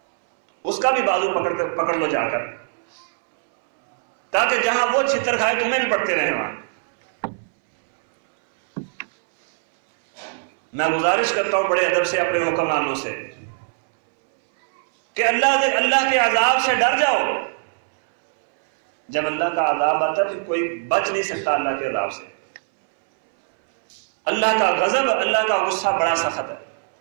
اس کا بھی بازو پکڑ لو جا کر، تاکہ جہاں وہ چھتر کھائے تمہیں بھی پڑتے رہے وہاں۔ میں گزارش کرتا ہوں بڑے ادب سے اپنے حکمرانوں سے کہ اللہ کے عذاب سے ڈر جاؤ۔ جب اللہ کا عذاب آتا ہے پھر کوئی بچ نہیں سکتا اللہ کے عذاب سے۔ اللہ کا غضب، اللہ کا غصہ بڑا سخت ہے۔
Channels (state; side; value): silent; left; 65 dB below the other